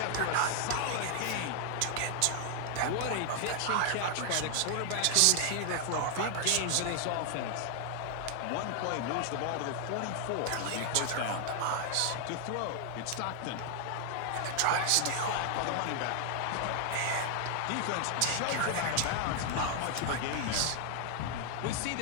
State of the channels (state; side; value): different; both; correlation 0.00